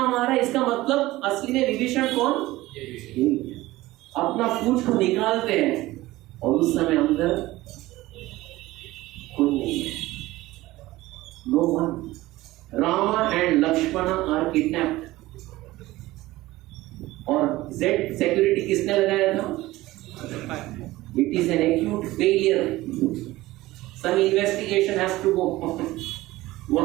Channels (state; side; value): quieter; left; 17.9 dB